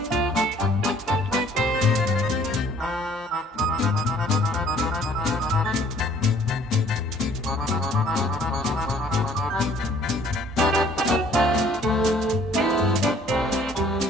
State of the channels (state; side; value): normal; both; correlation 0.58